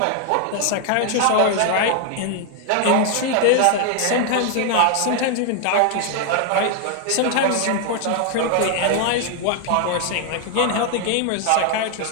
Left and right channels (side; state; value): both; different; correlation 0.00